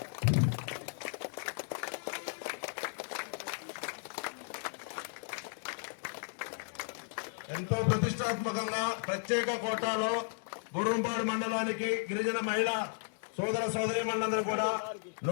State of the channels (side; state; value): right; silent; digital silence